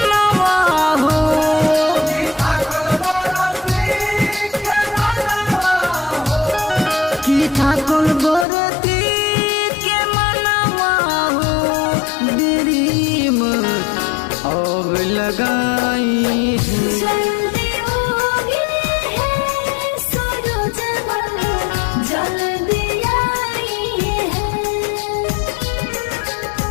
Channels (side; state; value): right; drops out; at 8.5 s